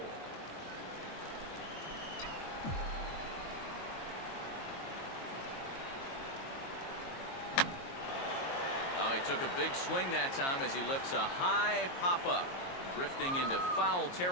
He took a big swing that time as he lifts a high pop-up, drifting into foul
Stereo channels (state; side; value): late; right; 22 ms